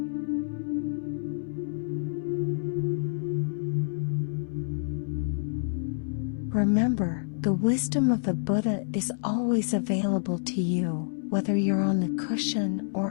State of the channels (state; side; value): silent; right; 59 dB below the other